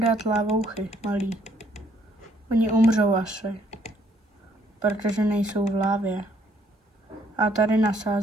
dát lávouchy, malý. Oni umřou asi, protože nejsou v lávě. A tady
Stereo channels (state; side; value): normal; both; correlation 0.67